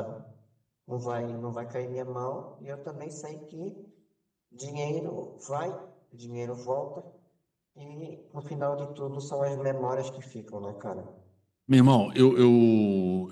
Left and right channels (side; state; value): both; identical; correlation 1.00